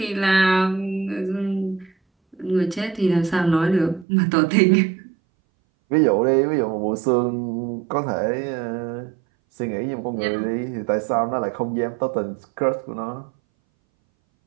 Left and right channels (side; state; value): left; drops out; at 4.0 s